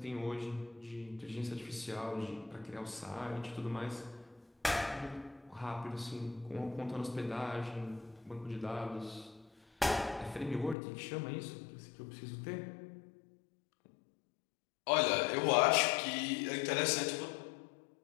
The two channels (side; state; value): right; drops out; at 10.8 s